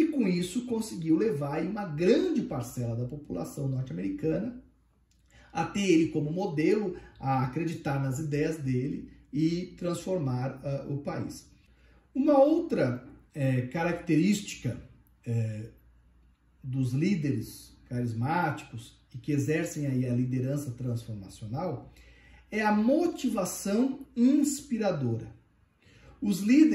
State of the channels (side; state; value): both; identical; correlation 1.00